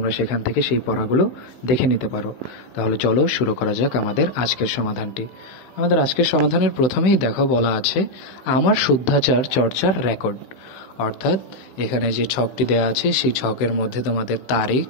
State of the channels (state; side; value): late; right; 15 ms